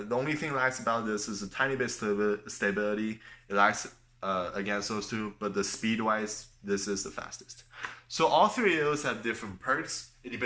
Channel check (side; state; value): both; identical; correlation 1.00